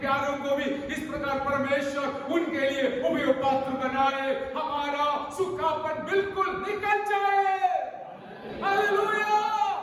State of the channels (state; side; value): identical; both; correlation 1.00